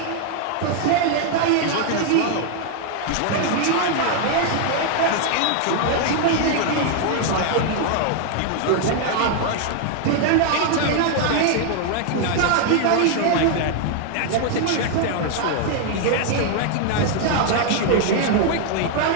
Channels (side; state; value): both; different; correlation 0.00